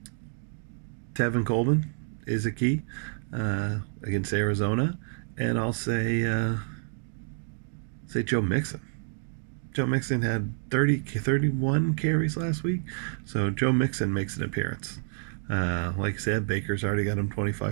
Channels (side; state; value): left; silent; 59 dB below the other